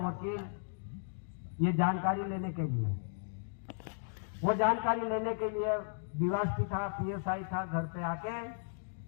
ये जानकारी लेने के लिए, वो जानकारी लेने के लिए डीवाईएसपी था, PSI था, घर पे आके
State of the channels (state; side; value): silent; right; digital silence